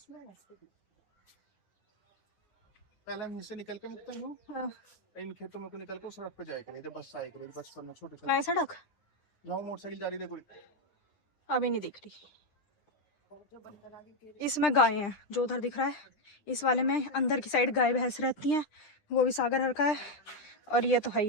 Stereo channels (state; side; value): late; right; 9.9 ms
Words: पहले हम से निकल के मुक्ता हूँ। हाँ। इन खेतों में को निकल कर सड़क पे जाएगा, नहीं तो बस आएगी। बचपन में छोटे मैं सड़क जाऊँ, मोटरसाइकिल जा रही देखो। अभी नहीं दिख रही। इसमें गाय हैं, जो उधर दिख रहा है इस वाले में अंदर की साइड गाय भैंस रहती हैं, वो भी सागर हर का है। और ये तो है